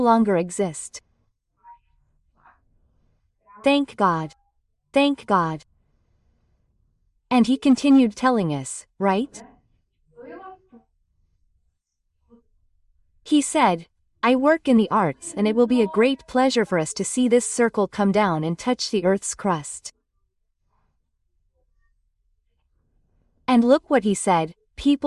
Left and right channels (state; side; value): identical; both; correlation 1.00